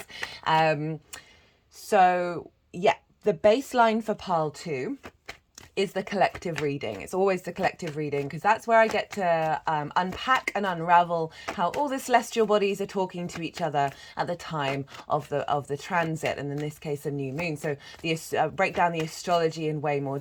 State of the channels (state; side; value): identical; both; correlation 1.00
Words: So yeah, the baseline for pile 2 is the collective reading. It's always the collective reading because that's where I get to unpack and unravel how all the celestial bodies are talking to each other at the time of the transit, and in this case a new moon. So break down the astrology in way more